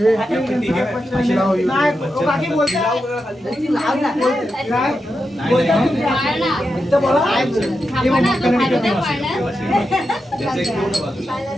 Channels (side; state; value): both; normal; correlation 0.88